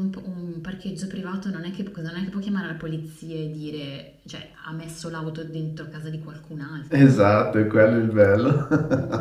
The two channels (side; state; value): both; identical; correlation 1.00